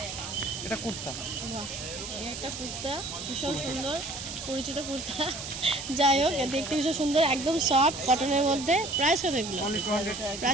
এটা কুর্তা। বাহ, এই একটা কুর্তা ভীষণ সুন্দর, পরিচিত কুর্তা। যাই হোক, দেখতে ভীষণ সুন্দর, একদম সফট কটনের মধ্যে। প্রাইস কত এগুলো? অনলি 200।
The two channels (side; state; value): right; noise; hiss, 8 dB below the sound